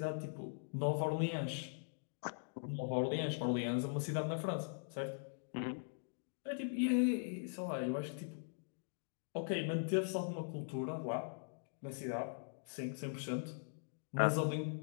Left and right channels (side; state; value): right; silent; digital silence